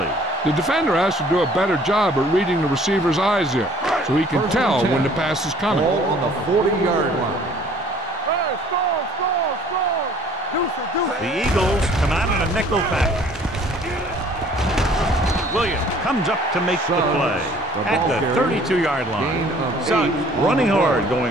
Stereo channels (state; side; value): normal; both; correlation 0.55